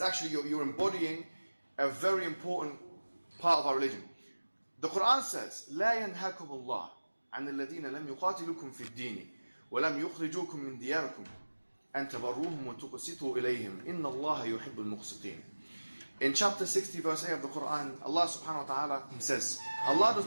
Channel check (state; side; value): inverted; both; correlation -1.00